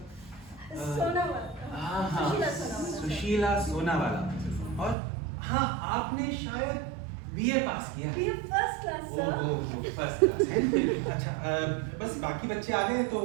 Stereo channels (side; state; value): left; drops out; at 5.0 s